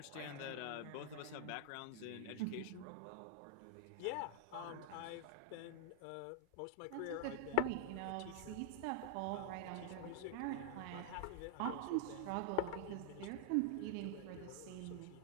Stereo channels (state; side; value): different; both; correlation 0.00